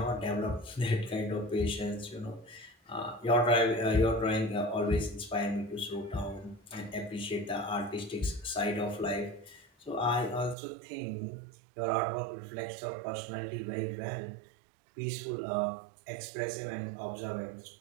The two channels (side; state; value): left; drops out; at 10.6 s